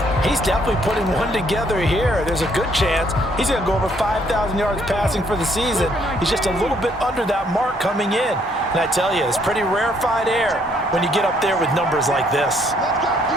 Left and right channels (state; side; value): normal; both; correlation 0.67